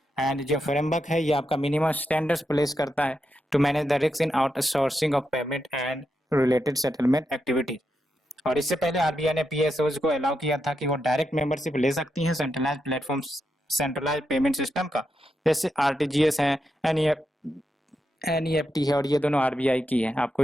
एंड जो फ्रेमवर्क है ये आपका मिनिमम स्टैंडर्ड्स प्लेस करता है to manage the risk in outsourcing of payment and related settlement activities. और इससे पहले आरबीआई ने पीएसओज को अलाउ किया था कि वो डायरेक्ट मेंबरशिप ले सकती हैं centralised platform centralised payment system का, जैसे आरटीजीएस है, एनईएफटी है और ये दोनों आरबीआई की है, आपको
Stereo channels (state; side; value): normal; both; correlation 0.85